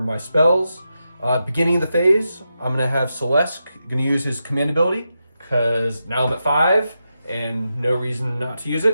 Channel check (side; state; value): both; inverted; correlation -0.87